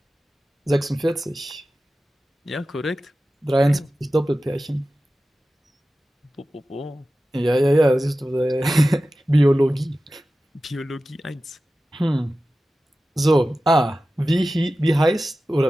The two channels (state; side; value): normal; both; correlation 0.95